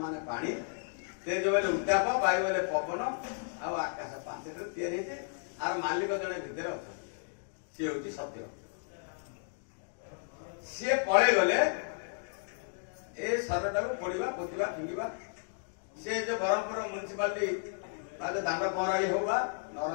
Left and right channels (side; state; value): right; silent; digital silence